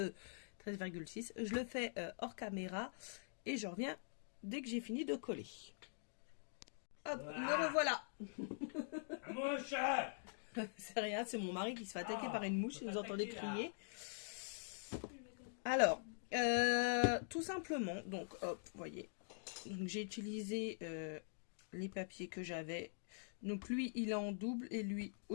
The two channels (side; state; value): right; silent; digital silence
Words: Je le fais hors caméra et je reviens dès que j'ai fini de coller. Hop, me revoilà. Mouche. C'est rien, c'est mon mari qui se fait attaquer par une mouche, si vous entendez crier. Alors, tout simplement, donc hop, vous voyez, j'ai utilisé les papiers que j'avais. Donc lui, il est en double et lui